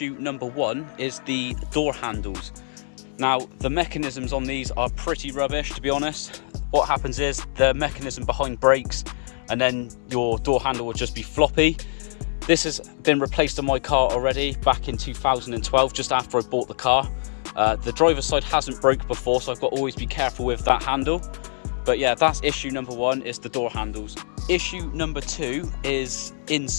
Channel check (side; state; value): right; silent; 62 dB below the other